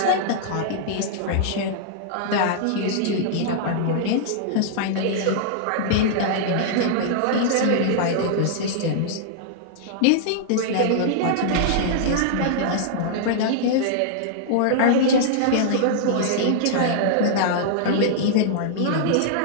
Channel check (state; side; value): different; both; correlation -0.01